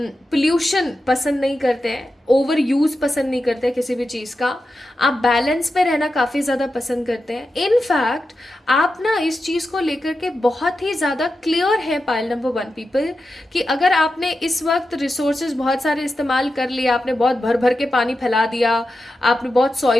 पसंद नहीं करते हैं, ओवर यूज़ पसंद नहीं करते किसी भी चीज़ का। आप बैलेंस पे रहना काफ़ी ज़्यादा पसंद करते हैं। इनफैक्ट आप ना इस चीज़ को लेकर के बहुत ही ज़्यादा क्लियर है पाइल नंबर 1 पीपल, कि अगर आपने इस वक्त रिसोर्सेज बहुत सारे इस्तेमाल कर लिया, आपने बहुत भर भर के पानी फैला दिया, आपने बहुत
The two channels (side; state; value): both; normal; correlation 0.90